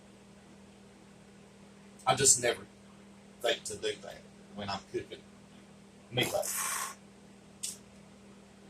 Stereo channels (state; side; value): identical; both; correlation 1.00